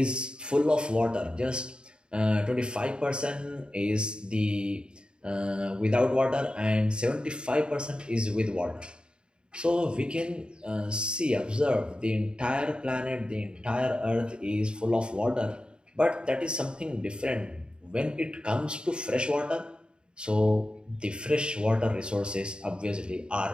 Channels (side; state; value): left; late; 0.051 ms